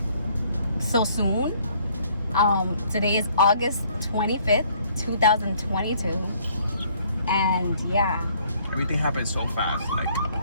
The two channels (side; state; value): both; inverted; correlation -0.62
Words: so soon. Today is August 25th, 2022, and yeah, Everything happened so fast. Like,